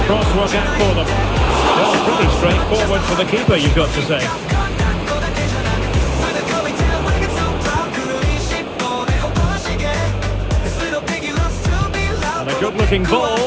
Cross work out for them. Well, pretty straightforward for the keeper, you've got to say. And a good-looking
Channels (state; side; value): identical; both; correlation 1.00